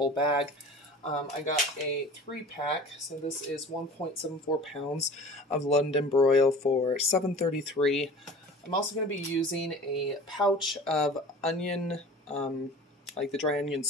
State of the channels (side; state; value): both; normal; correlation 0.41